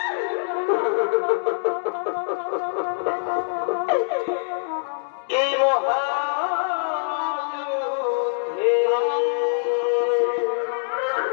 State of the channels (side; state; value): right; silent; digital silence